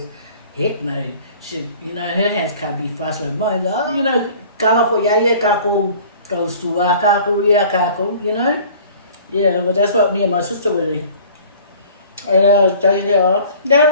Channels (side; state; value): both; inverted; correlation -0.48